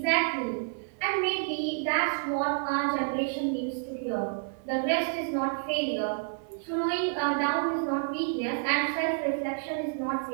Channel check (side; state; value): left; silent; 55 dB below the other